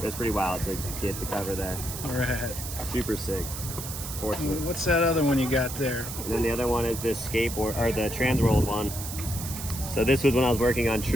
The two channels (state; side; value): noise; right; hiss, 8 dB below the sound